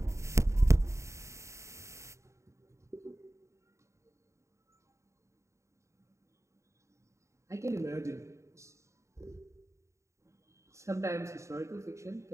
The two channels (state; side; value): late; left; 0.14 ms